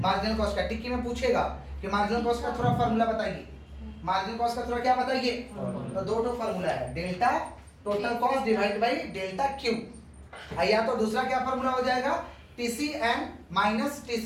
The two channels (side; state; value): both; identical; correlation 1.00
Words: कॉस्ट का। टिक्की में पूछेगा कि मार्जिनल कॉस्ट का थोड़ा फार्मूला बताइए, मार्जिनल कॉस्ट का थोड़ा क्या बताइए? तो दो फार्मूला है, delta total cost divide by delta Q. या तो दूसरा क्या फार्मूला हो जाएगा? TCN minus